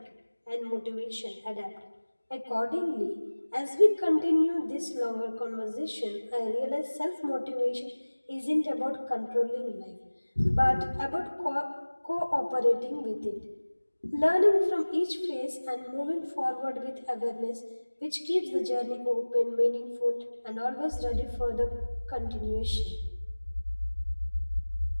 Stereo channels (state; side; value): inverted; both; correlation -1.00